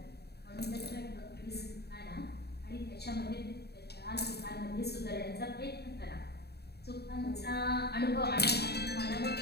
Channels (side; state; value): right; late; 0.47 ms